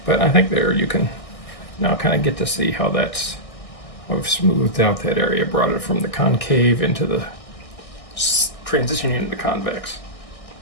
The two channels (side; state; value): right; late; 1.6 ms